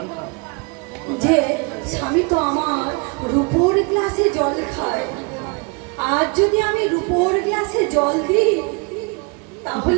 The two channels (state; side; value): quieter; left; 31.3 dB